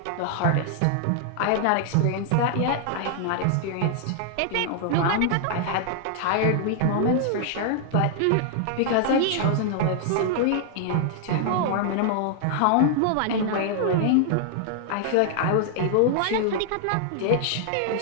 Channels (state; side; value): different; both; correlation -0.01